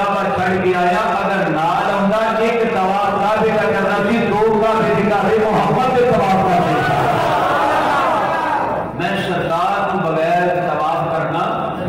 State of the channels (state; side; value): identical; both; correlation 1.00